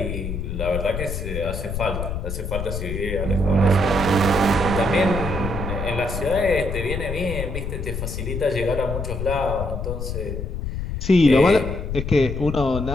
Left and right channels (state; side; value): noise; left; rumble, 4 dB below the sound